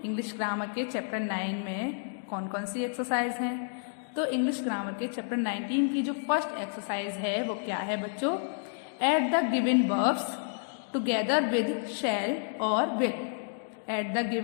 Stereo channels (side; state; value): right; silent; digital silence